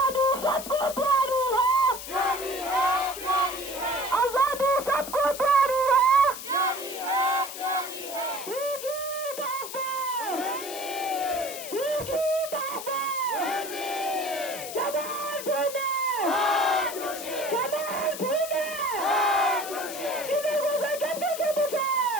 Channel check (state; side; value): noise; left; hiss, 10 dB below the sound